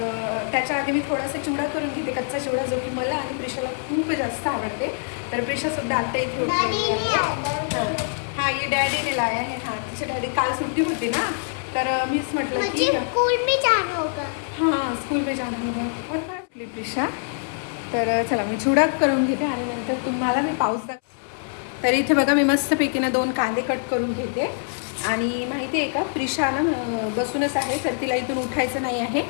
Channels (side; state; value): right; silent; 62 dB below the other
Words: त्याच्या आधी मी थोडासा चिवडा करून घेते, कच्चा चिवडा, जो की मला आणि प्रिशाला खूप जास्त आवडते. तर प्रिशासुद्धा आता इथे उठलेली आहे. हां, ये डॅडीने लाया है. हां, तिचे डॅडी काल सुट्टी होती ना, तर मीच म्हटलं की स्कूल में जाना होगा. हां, स्कूल में जाना होगा. और काय प्रिशा, तर चला मी चिवडा करून घेते आणि नंतर तुम्हाला मी पाऊस तर इथे बघा मी मस्तपैकी ना 2 कांदे कट करून घेते. आणि माहिती आहे का, प्रिशा ना बसूनच आहे, तर तिला इथून उठायचं नाही आहे,